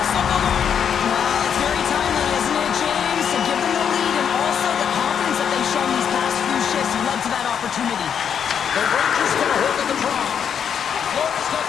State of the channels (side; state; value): right; quieter; 7.9 dB